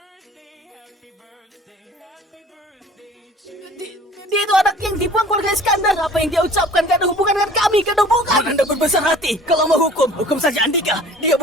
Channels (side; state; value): both; normal; correlation 0.48